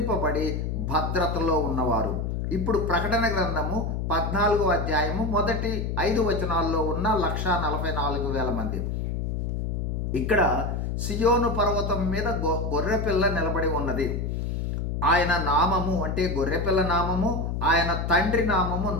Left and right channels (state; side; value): noise; left; hum, 1 dB below the sound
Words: భద్రతలో ఉన్నవారు. ఇప్పుడు ప్రకటన గ్రంథము 14వ అధ్యాయము మొదటి 5 వచనాల్లో ఉన్న 1,44,000 మంది. ఇక్కడ సియోను పర్వతం మీద గొర్రెపిల్ల నిలబడి ఉన్నది. ఆయన నామము అంటే గొర్రెపిల్ల నామము, ఆయన తండ్రి నామము